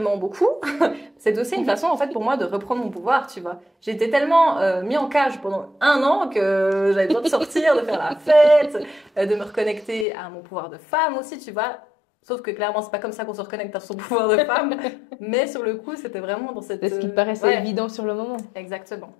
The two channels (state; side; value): drops out; right; at 10.1 s